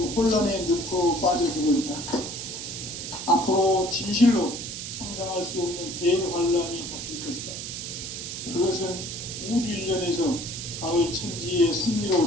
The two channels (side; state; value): right; noise; hiss, 7 dB below the sound